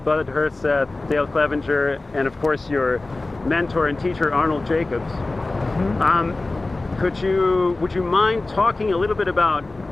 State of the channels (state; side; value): quieter; right; 3.1 dB